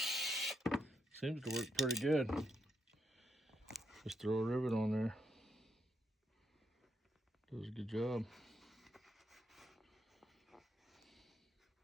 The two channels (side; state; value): both; normal; correlation 0.78